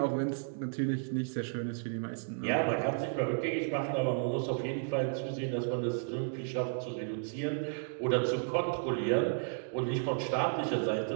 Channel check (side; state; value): left; silent; digital silence